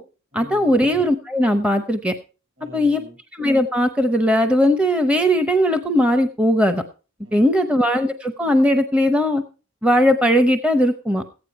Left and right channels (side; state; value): both; normal; correlation 0.78